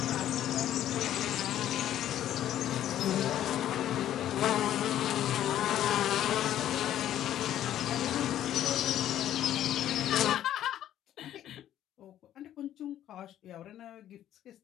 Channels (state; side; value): quieter; right; 11.8 dB